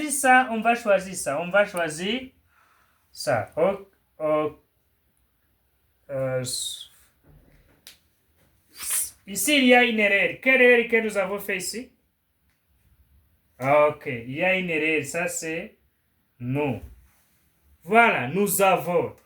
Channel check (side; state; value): both; identical; correlation 1.00